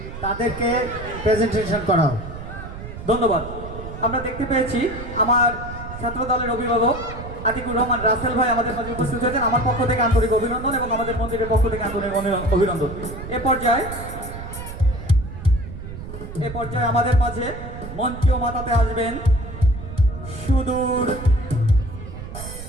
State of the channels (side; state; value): right; noise; rumble, 10 dB below the sound